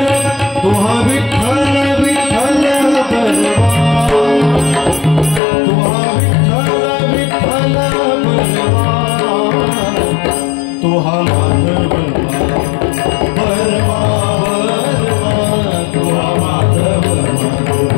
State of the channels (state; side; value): drops out; right; at 5.4 s